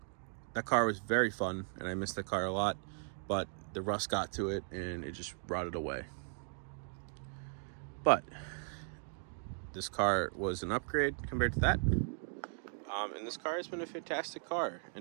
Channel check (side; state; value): left; silent; 53 dB below the other